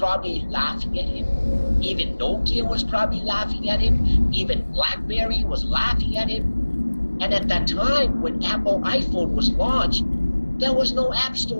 laughing at him. Even Nokia was probably laughing at him. Even BlackBerry was laughing at him. And at that time, when Apple iPhone was launched, there was no app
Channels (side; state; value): both; inverted; correlation -1.00